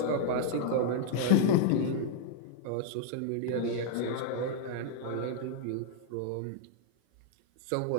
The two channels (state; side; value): different; both; correlation -0.01